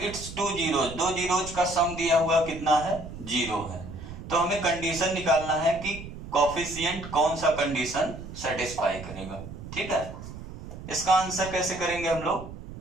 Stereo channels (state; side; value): noise; right; rumble, 12 dB below the sound